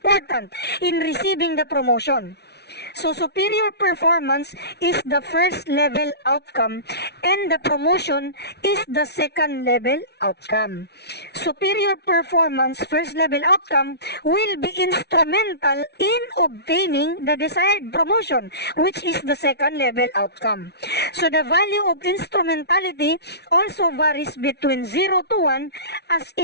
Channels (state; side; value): late; right; 0.49 ms